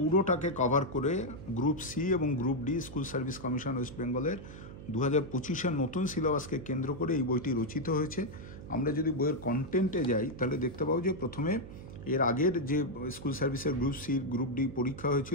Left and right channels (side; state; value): right; noise; hum, 13 dB below the sound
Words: কভার করে গ্রুপ সি এবং group D school service commission West বেঙ্গলের 2025-এর নতুন সিলেবাসকে কেন্দ্র করে এই বইটি রচিত হয়েছে। আমরা যদি বইয়ের কন্টেন্টে যাই তাহলে দেখতে পাবো যে প্রথমে এর আগের যে স্কুল সার্ভিসের গ্রুপ সি গ্রুপ ডি পরীক্ষা